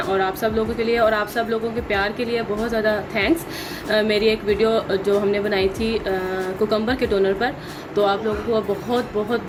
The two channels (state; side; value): identical; both; correlation 1.00